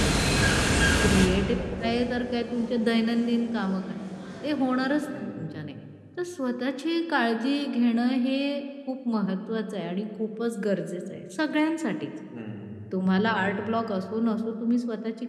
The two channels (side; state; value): both; identical; correlation 1.00